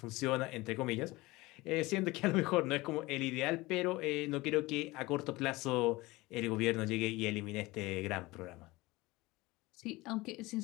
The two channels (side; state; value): right; quieter; 21.1 dB